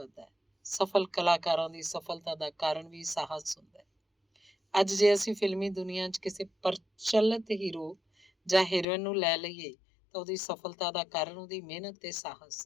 ਹੈ। ਸਫਲ ਕਲਾਕਾਰਾਂ ਦੀ ਸਫਲਤਾ ਦਾ ਕਾਰਨ ਵੀ ਸਾਹਸ ਹੁੰਦਾ ਹੈ। ਅੱਜ ਜੇ ਅਸੀਂ ਫਿਲਮੀ ਦੁਨੀਆ 'ਚ ਕਿਸੇ ਪ੍ਰਚਲਿਤ ਹੀਰੋ ਜਾਂ ਹੀਰੋਇਨ ਨੂੰ ਲੈ ਲਈਏ ਤਾਂ ਉਹਦੀ ਸਫਲਤਾ ਦਾ ਕਾਰਨ ਉਹਦੀ ਮਿਹਨਤ ਤੇ ਸਾਹਸ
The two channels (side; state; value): right; drops out; at 8.8 s